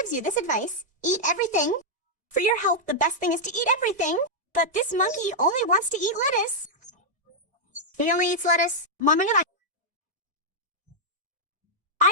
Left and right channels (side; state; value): left; late; 1.7 ms